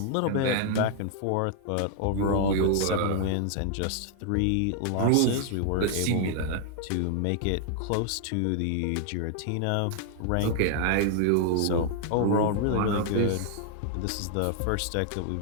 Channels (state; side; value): different; both; correlation 0.00